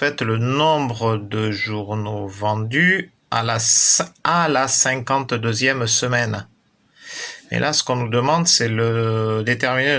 le nombre de journaux vendus à la 52e semaine. Et là, ce qu'on nous demande, c'est déterminer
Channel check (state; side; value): identical; both; correlation 1.00